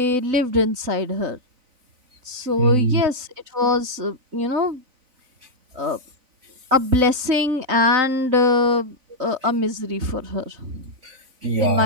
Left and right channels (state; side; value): late; left; 3.9 ms